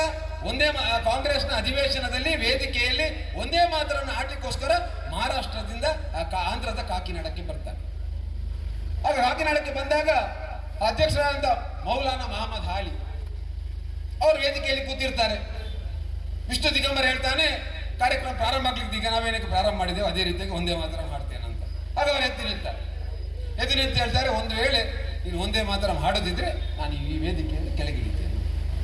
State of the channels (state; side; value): identical; both; correlation 1.00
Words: ಒಂದೇ ಕಾಂಗ್ರೆಸ್ನ ಅಧಿವೇಶನದಲ್ಲಿ ವೇದಿಕೆಯಲ್ಲಿ ಒಂದೇ ಮಾತರನ್ನು ಆಡ್ಲಿಕ್ಕೋಸ್ಕರ ಮಹಾರಾಷ್ಟ್ರದಿಂದ ಆಂಧ್ರದ ಕಾಕಿನಾಡಕ್ಕೆ ಬರ್ತಾನೆ. ಆಗ ಕಾಕಿನಾಡಕ್ಕೆ ಬಂದಾಗ ಅಧ್ಯಕ್ಷರಾದಂಥ ಮೌಲಾನಾ ಮಹಮ್ಮದ್ ಹಾಲಿ ಅವರು ವೇದಿಕೆಯಲ್ಲಿ ಕೂತಿರ್ತಾರೆ. ವಿಷ್ಣು ದಿಗಂಬರ್ ಹೇಳ್ತಾನೆ, ಕಾರ್ಯಕ್ರಮ ಪ್ರಾರಂಭ ಆಗ್ಲಿಕ್ಕೆ ಈಗ ನಾವೇನಕ್ಕೆ ಪ್ರಾರಂಭ ಮಾಡಿದ್ದೇವೆ ಅದೇ ರೀತಿಯಾಗಿ ಒಂದೇ ಮಾತ್ರ ಮಾಡ್ತೇನೆ ಅಂತ. ಆಗ ಅವರು ಎದ್ದು ನಿಂತು ಹೇಳ್ತಾರೆ, ಒಂದು ವೇಳೆ ನೀನು ಒಂದೇ ಮಾತ್ರ ಮಾಡೋದಿದ್ರೆ ನಾನು ಈ ವೇದಿಕೆಯಲ್ಲಿ ಕೆಳಗಿಳಿದ್ದೇನೆ.